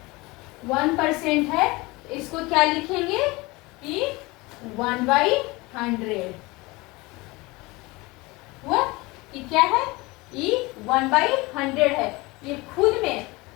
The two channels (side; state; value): right; quieter; 23.2 dB